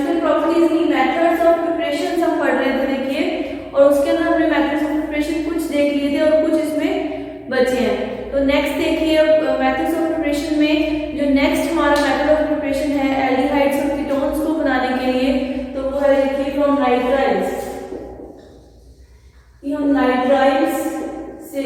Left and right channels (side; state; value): both; identical; correlation 1.00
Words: प्रॉपर्टीज की मेथड्स ऑफ प्रिपरेशन हम पढ़ रहे थे, देखिए, और उसके अंदर हमने मेथड्स ऑफ प्रिपरेशन कुछ देख लिए थे और कुछ इसमें बचे हैं। तो नेक्स्ट देखिए, मेथड्स ऑफ प्रिपरेशन में जो नेक्स्ट हमारा मेथड ऑफ प्रिपरेशन है एल्डिहाइड्स और कीटोन्स को बनाने के लिए, तो वो है देखिए फ्रॉम नाइट्राइल्स। हम नाइट्राइल्स से